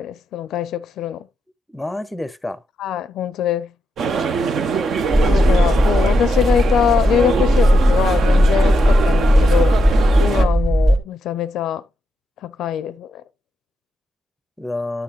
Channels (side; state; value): both; normal; correlation 0.83